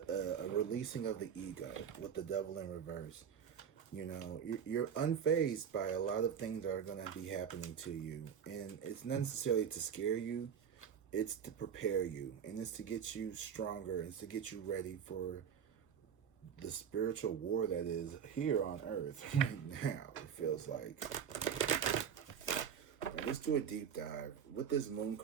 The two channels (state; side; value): quieter; left; 7.8 dB